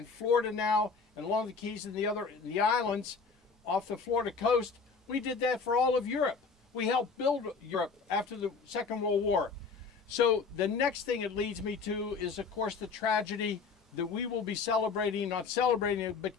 Florida now and along the Keys and the islands off the Florida coast, we did that for all of Europe. We helped build Europe after the Second World War. So the next thing it leads me to is, of course, the tragedy that we will be celebrating, not celebrating it, but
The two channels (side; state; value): right; quieter; 4.9 dB